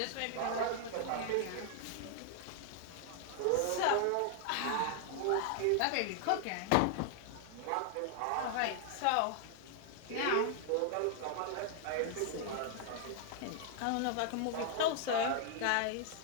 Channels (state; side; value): different; both; correlation 0.00